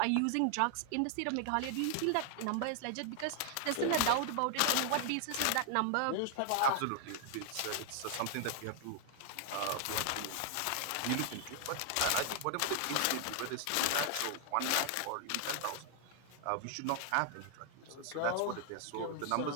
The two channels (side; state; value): both; different; correlation 0.00